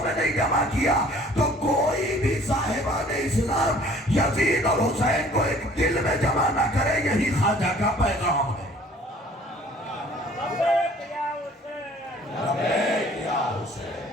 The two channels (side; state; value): both; normal; correlation 0.53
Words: में नहीं जमा किया तो कोई भी साहिबान इस्लाम यजीद और हुसैन को एक दिल में जमा ना करे। यही ख्वाजा का पैगाम है।